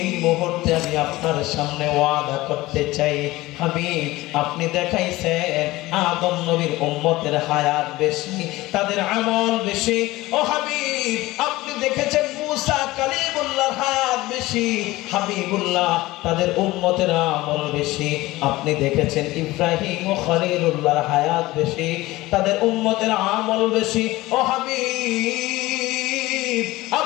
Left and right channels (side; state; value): right; quieter; 18.8 dB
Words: মুহূর্তে আমি আপনার সামনে ওয়াদা করতে চাই। হাবিব, আপনি দেখাইছেন আদম নবীর উম্মতের হায়াত বেশি, তাদের আমল বেশি। ও হাবিব, আপনি দেখেছেন মুসা কালিমুল্লাহর হায়াত বেশি। হাবিবুল্লাহ, তাদের উম্মতের আমল বেশি। আপনি দেখেছেন ইব্রাহিম ও খলিলুল্লাহর হায়াত বেশি, তাদের উম্মতের আমল বেশি। ও হাবিব,